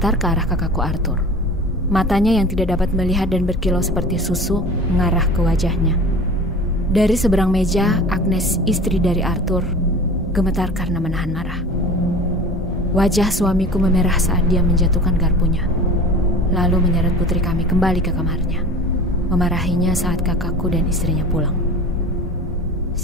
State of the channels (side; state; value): both; normal; correlation 0.39